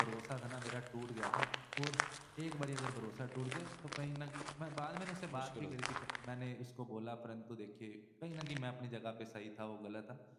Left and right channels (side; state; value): both; identical; correlation 1.00